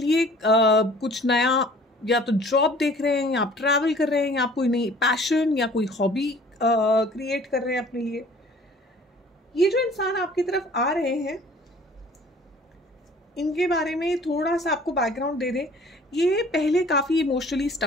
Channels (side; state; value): both; normal; correlation 0.51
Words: कुछ नया या तो जॉब देख रहे हैं, या आप ट्रैवल कर रहे हैं, या आप कोई नई पैशन या कोई हॉबी क्रिएट कर रहे हैं अपने लिए। ये जो इंसान आपकी तरफ आ रहे हैं, इनके बारे में थोड़ा सा आपको बैकग्राउंड दे दें। ये पहले काफ़ी इमोशनली